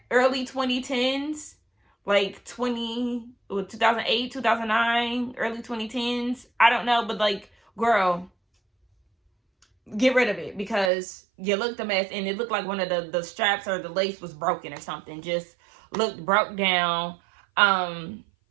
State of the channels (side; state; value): left; drops out; at 10.9 s